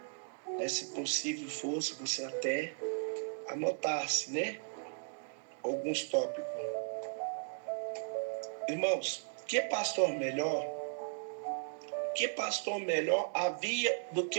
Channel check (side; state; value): left; silent; digital silence